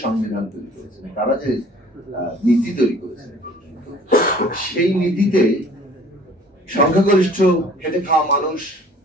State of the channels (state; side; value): normal; both; correlation 0.52